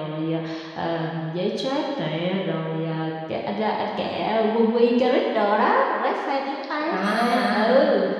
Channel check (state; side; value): identical; both; correlation 1.00